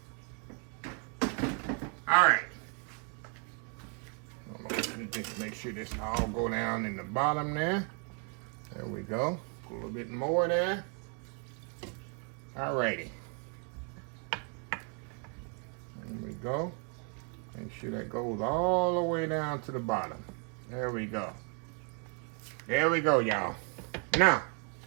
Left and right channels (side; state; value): left; quieter; 35.6 dB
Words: All right. Let me just make sure this all go down in the bottom there. There we go. Put a little bit more there. All righty. There we go. Make sure that goes all the way down to the bottom. There we go. There we go, y'all. Now,